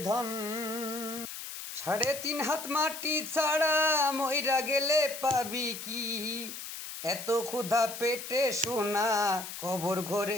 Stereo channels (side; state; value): left; noise; hiss, 9 dB below the sound